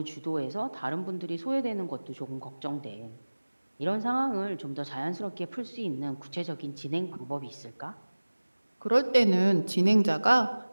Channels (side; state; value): both; inverted; correlation -1.00